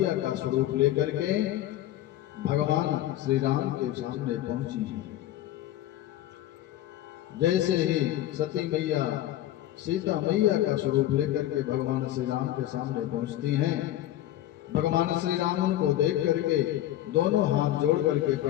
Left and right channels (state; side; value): quieter; right; 13.7 dB